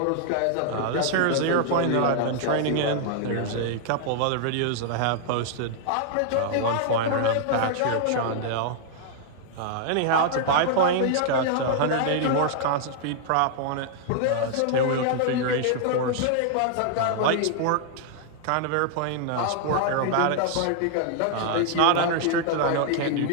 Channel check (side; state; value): both; different; correlation -0.01